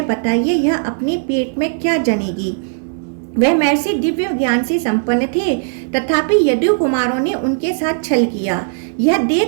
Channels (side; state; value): left; silent; 62 dB below the other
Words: बताइए यह अपने पेट में क्या जनेगी? वह महर्षि दिव्य ज्ञान से संपन्न थे, तथापि यदु कुमारों ने उनके साथ छल किया। यह